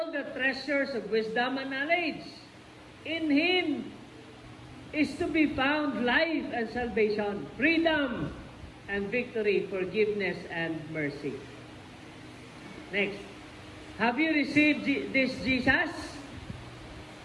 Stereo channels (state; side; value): identical; both; correlation 1.00